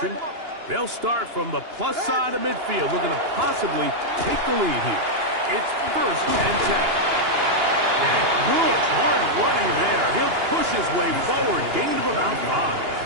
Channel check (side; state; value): left; late; 2.9 ms